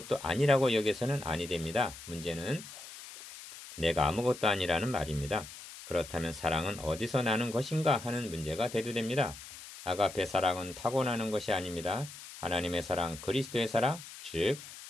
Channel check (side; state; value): left; noise; hiss, 14 dB below the sound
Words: 아니라고 여겨서는 아니 됩니다. 문제는 내가 아무것도 아니라는 말입니다. 그렇다면 사랑은 어디서 나는 것인가 하는 문제가 대두됩니다. 아가페 사랑은 타고나는 것이 아닙니다. 하나님의 사랑, 그리스도의 사랑, 즉